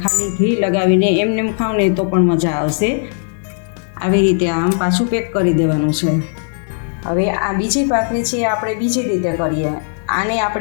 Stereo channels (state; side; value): silent; right; digital silence